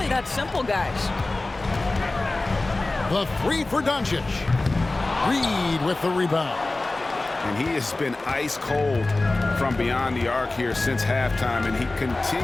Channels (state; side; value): quieter; right; 3.0 dB